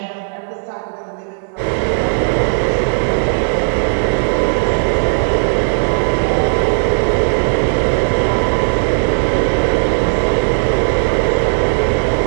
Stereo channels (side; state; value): left; silent; digital silence